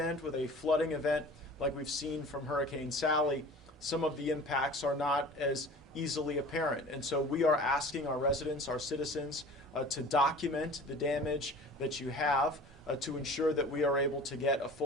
with a flooding event, like we've seen from Hurricane Sally, some of the impacts are not as easily apparent. And so we are asking our residents, our citizens, to document the damage that you have to ensure that we are able to get a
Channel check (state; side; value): normal; both; correlation 0.42